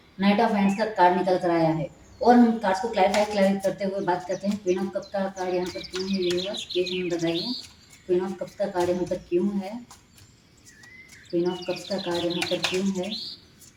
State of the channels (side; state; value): both; identical; correlation 1.00